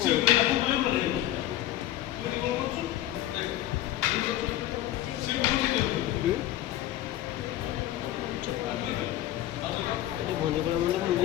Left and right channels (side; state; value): right; quieter; 13.9 dB